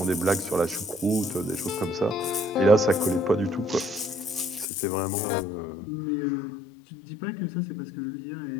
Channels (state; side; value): drops out; right; at 4.7 s